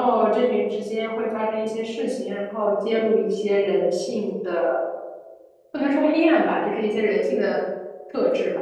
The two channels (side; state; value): both; identical; correlation 1.00